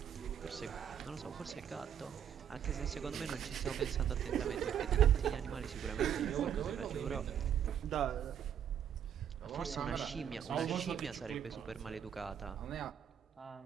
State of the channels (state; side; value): quieter; left; 9.0 dB